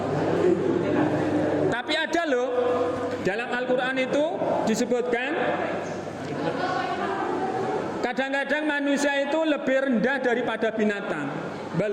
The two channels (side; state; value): both; identical; correlation 1.00